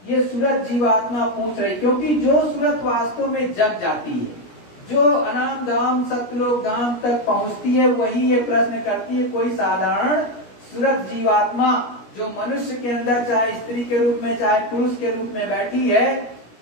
ये सूरत जीवात्मा पूछ रही, क्योंकि जो सूरत वास्तव में जग जाती है, जो अनाम धाम सतलोक धाम तक पहुंचती है, वही ये प्रश्न करती है। कोई साधारण सूरत जीवात्मा जो मनुष्य के अंदर चाहे स्त्री के रूप में चाहे पुरुष के रूप में बैठी है,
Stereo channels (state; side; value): late; right; 17 ms